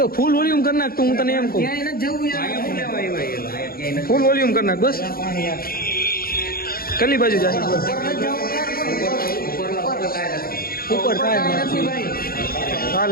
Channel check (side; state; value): right; late; 0.43 ms